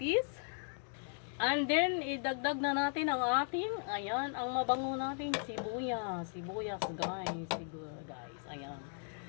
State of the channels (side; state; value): right; silent; 53 dB below the other